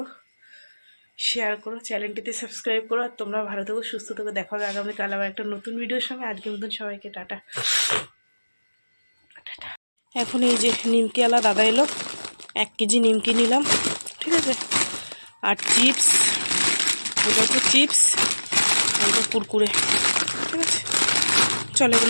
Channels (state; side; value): inverted; both; correlation -1.00